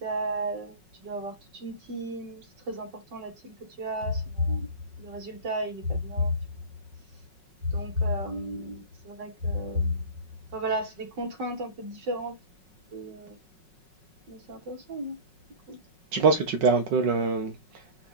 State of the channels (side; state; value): left; late; 5.4 ms